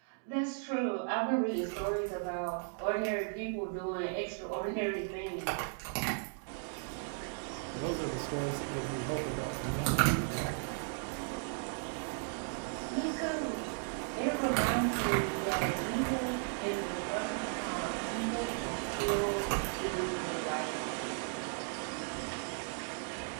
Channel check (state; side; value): silent; left; 54 dB below the other